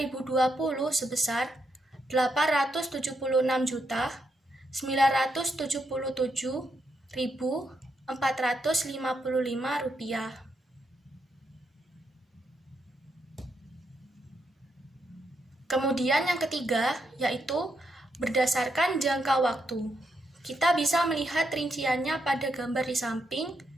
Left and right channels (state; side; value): normal; both; correlation 0.80